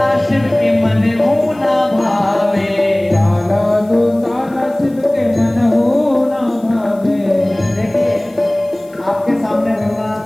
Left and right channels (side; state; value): left; noise; hiss, 29 dB below the sound